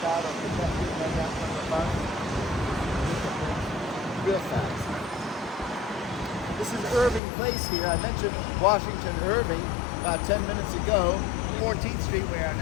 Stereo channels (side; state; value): right; drops out; at 7.2 s